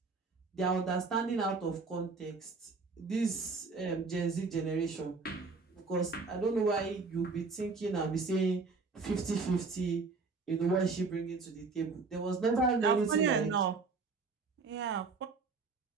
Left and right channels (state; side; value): quieter; left; 4.3 dB